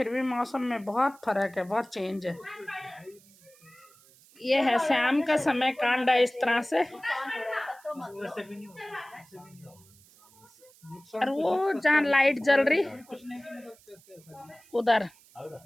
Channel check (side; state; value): right; noise; hiss, 27 dB below the sound